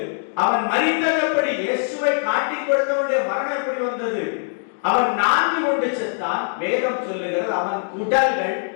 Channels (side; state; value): right; silent; digital silence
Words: அவன் மரித்தபடி இயேசுவை காட்டி கொடுத்தவனுடைய மரணம் எப்படி வந்தது? அவன் நான்கு கொண்டு செத்தான். வேதம் சொல்லுகிறது அவன் உடல்கள்